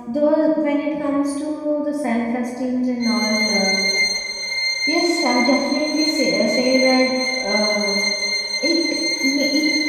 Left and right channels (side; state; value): both; identical; correlation 1.00